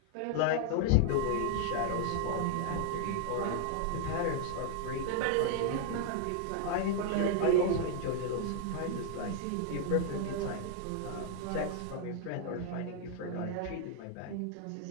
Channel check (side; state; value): both; different; correlation 0.00